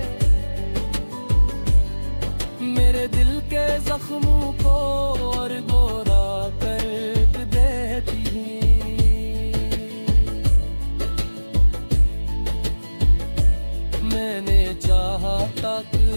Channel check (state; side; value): inverted; both; correlation -1.00